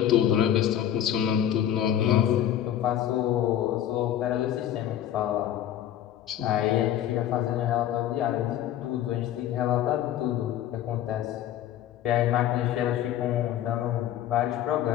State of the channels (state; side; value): quieter; right; 11.2 dB